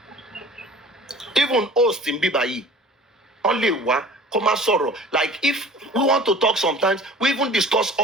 Even host in Bibayi, only one, come sorrow. Like if we want to talk sometimes, we even discuss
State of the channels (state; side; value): normal; both; correlation 0.45